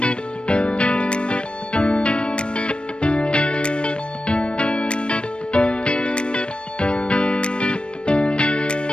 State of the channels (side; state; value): right; late; 0.057 ms